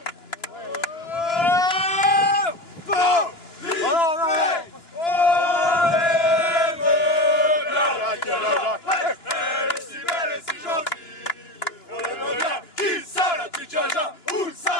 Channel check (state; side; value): late; right; 2.9 ms